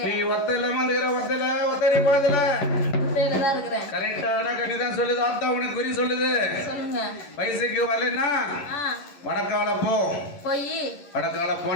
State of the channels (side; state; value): right; late; 11 ms